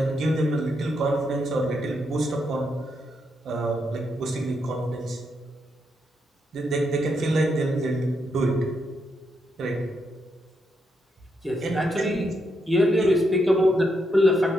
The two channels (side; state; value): both; normal; correlation 0.80